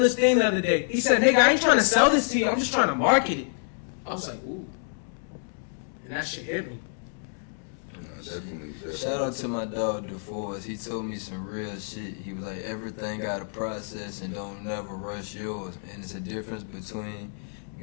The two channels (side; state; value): right; silent; 60 dB below the other